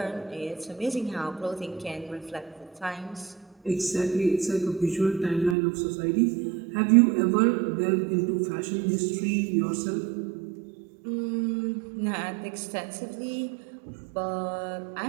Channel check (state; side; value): drops out; left; at 5.6 s